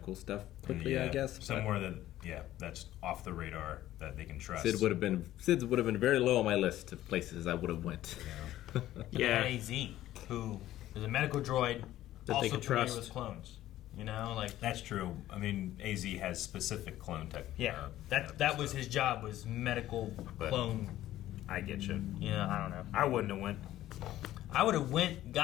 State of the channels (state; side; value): quieter; right; 14.0 dB